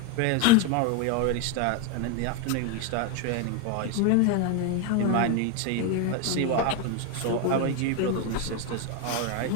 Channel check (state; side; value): different; both; correlation 0.01